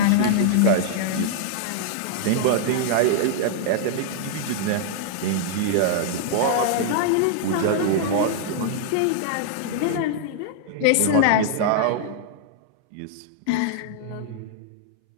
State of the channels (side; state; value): both; different; correlation -0.01